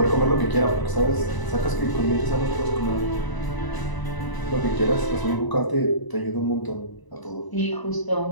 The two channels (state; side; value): late; right; 1.0 ms